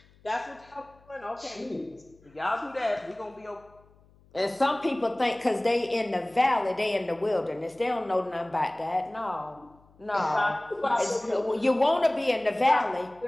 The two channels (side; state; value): left; noise; hum, 29 dB below the sound